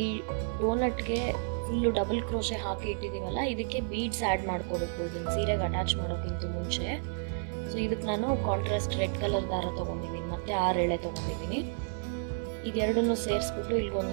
ಈ ಡೋನಟ್ಗೆ ಫುಲ್ ಡಬಲ್ ಕ್ರೋಶೆ ಹಾಕಿ ಇಟ್ಟಿದೀವಲ್ಲ, ಇದಕ್ಕೆ ಬೀಡ್ಸ್ ಆಡ್ ಮಾಡ್ಕೋಬೇಕು ಇದನ್ನ ಸೀರೆಗೆ ಅಟ್ಯಾಚ್ ಮಾಡೋಕ್ಕಿಂತ ಮುಂಚೆ. ಸೊ ಇದಕ್ಕೆ ನಾನು ಕಾಂಟ್ರಾಸ್ಟ್ ರೆಡ್ ಕಲರ್ ದಾರ ತಗೊಂಡಿದ್ದೀನಿ, ಮತ್ತೆ 6 ಎಳೆ ತಗೊಂಡಿದ್ದೀನಿ. ಇದೆರಡನ್ನು ಸೇರಿಸ್ಬಿಟ್ಟು ಇಲ್ಲಿ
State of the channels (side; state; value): left; silent; 57 dB below the other